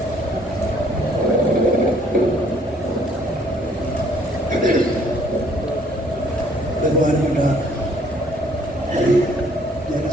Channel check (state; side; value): normal; both; correlation 0.62